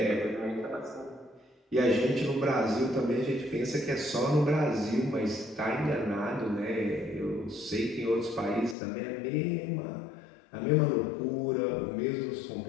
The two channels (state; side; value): drops out; right; at 8.8 s